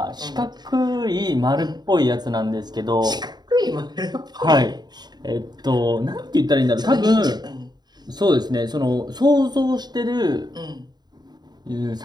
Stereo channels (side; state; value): left; late; 0.20 ms